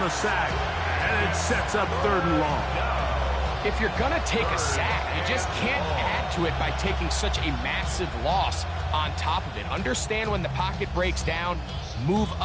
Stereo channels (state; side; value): identical; both; correlation 1.00